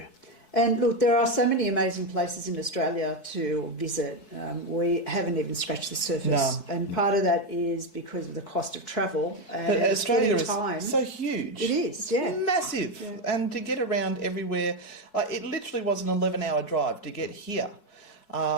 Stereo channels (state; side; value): late; right; 4.6 ms